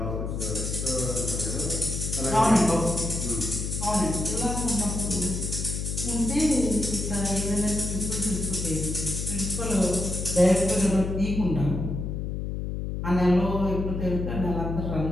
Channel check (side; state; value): left; noise; hum, 3 dB below the sound